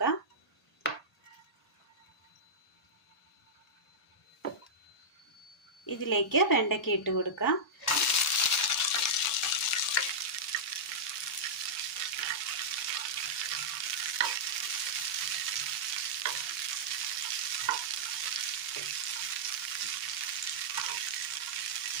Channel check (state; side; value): normal; both; correlation -0.10